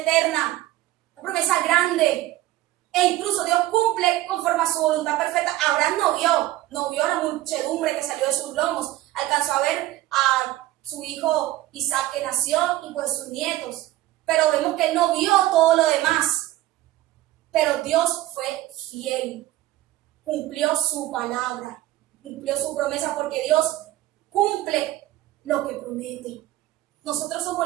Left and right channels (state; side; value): quieter; left; 15.7 dB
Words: Una promesa grande. E incluso Dios cumple conforme a su voluntad perfecta. Abraham no vio la muchedumbre que salió de sus lomos. Alcanzó a ver a su hijo Isaac que nació y pues sus nietos. Pero vemos que él no vio todo lo demás. Pero Dios fue fiel, cumplió su palabra, cumplió su promesa, porque Dios cumple lo que promete. Nosotros